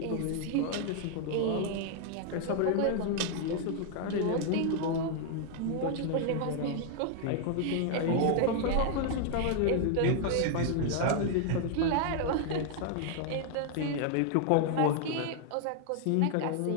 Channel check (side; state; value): both; different; correlation 0.00